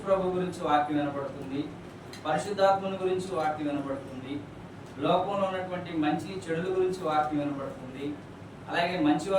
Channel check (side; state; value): both; identical; correlation 1.00